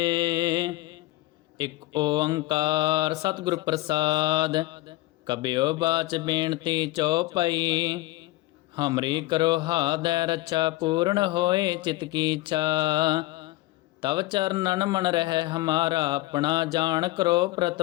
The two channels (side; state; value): right; quieter; 18.4 dB